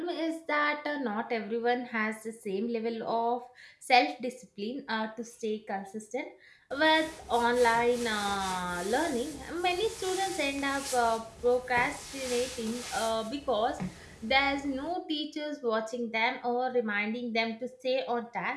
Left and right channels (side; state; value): both; identical; correlation 1.00